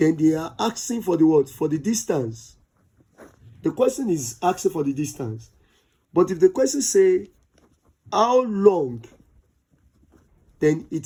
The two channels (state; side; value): identical; both; correlation 1.00